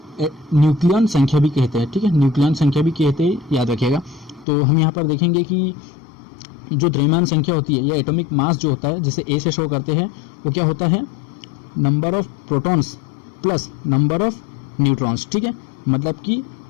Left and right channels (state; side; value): drops out; right; at 4.5 s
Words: न्यूक्लियन संख्या भी कहते हैं। ठीक है, न्यूक्लियन संख्या भी कहते हैं, याद रखिएगा। तो हम यहाँ पर देखेंगे कि जो द्रव्यमान संख्या होती है या एटॉमिक मास जो होता है जिसे ए से शो करते हैं वो क्या होता है, number of protons plus number of neutrons. ठीक है, मतलब कि